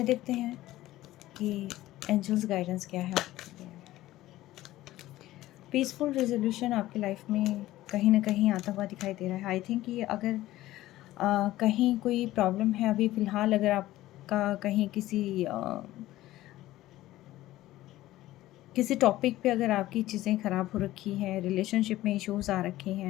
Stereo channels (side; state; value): right; quieter; 15.8 dB